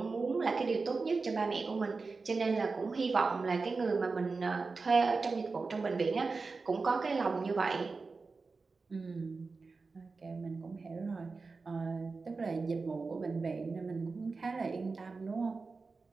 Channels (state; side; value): quieter; left; 4.2 dB